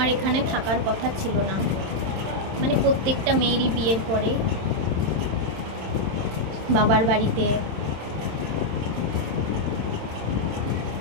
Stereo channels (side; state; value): left; late; 27 ms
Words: এখানে থাকার কথা ছিল না, মানে প্রত্যেকটা মেয়েরই বিয়ের পরে বাবার বাড়িতে